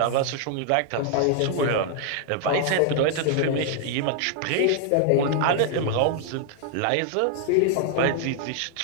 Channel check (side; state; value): both; different; correlation 0.00